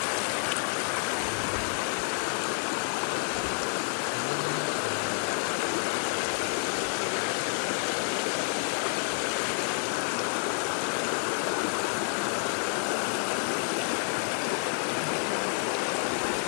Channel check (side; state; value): right; silent; 58 dB below the other